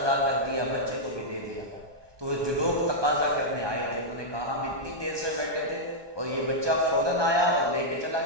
کر دیا، بچے کو بھی دے دیا۔ تو وہ جو لوگ تقاضا کرنے آئے تھے انہوں نے کہا ہم اتنی دیر سے بیٹھے تھے اور یہ بچہ فوراً آیا اور لے کے چلا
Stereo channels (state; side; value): late; left; 1.2 ms